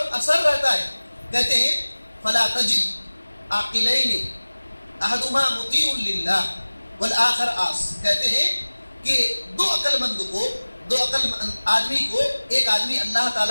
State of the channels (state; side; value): inverted; both; correlation -1.00